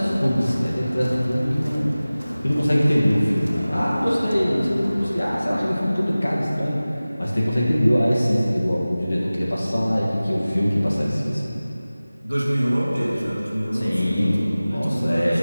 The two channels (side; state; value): both; inverted; correlation -0.98